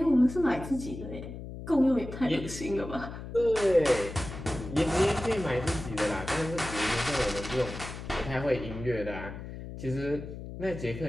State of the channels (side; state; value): left; noise; hum, 10 dB below the sound